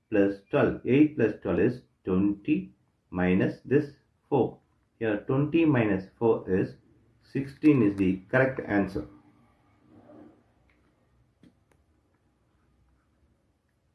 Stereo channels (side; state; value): both; identical; correlation 1.00